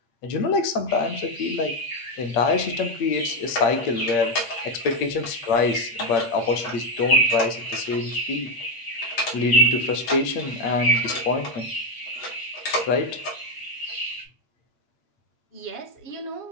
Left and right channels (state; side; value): late; right; 8.6 ms